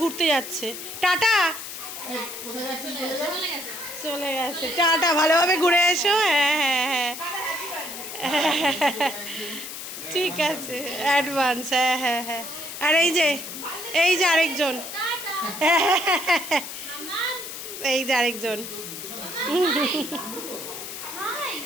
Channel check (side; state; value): left; noise; hiss, 9 dB below the sound